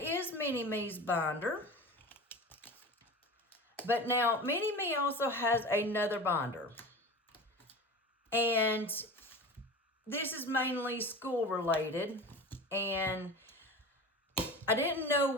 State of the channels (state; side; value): normal; both; correlation 0.32